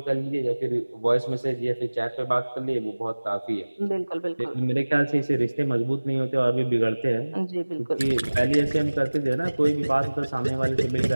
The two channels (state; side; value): inverted; both; correlation -1.00